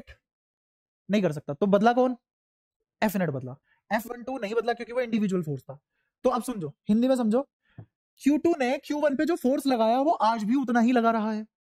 नहीं कर सकता, तो बदला कौन, F नेट बदला, F12 नहीं बदला क्योंकि वो इंडिविजुअल फोर्स था। तो अब समझो, हिंदी में समझो, Q2 ने Q1 पे जो फोर्स लगाया वो आज भी उतना ही लगा रहा है,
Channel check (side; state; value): both; identical; correlation 1.00